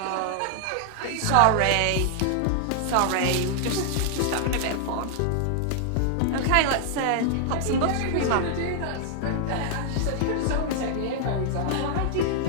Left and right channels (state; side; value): different; both; correlation -0.01